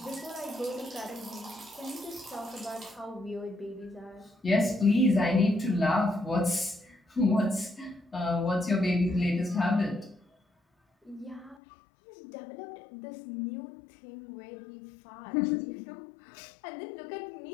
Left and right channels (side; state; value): right; drops out; at 11.6 s